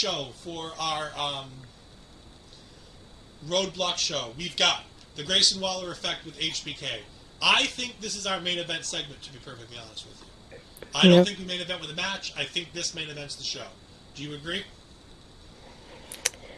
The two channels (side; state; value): both; identical; correlation 1.00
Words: for our Roadblock show, we've got the Grayson Waller effect with HBK. I think this is our main event segment, to be perfectly honest with you. I don't think we main event with a match. I think this main event's the show. Do you agree?